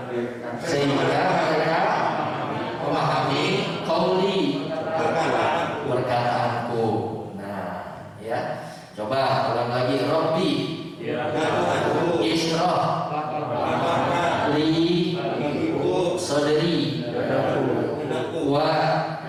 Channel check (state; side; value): identical; both; correlation 1.00